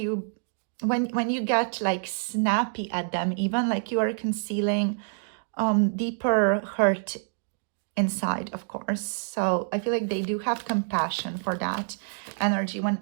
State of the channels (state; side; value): silent; left; digital silence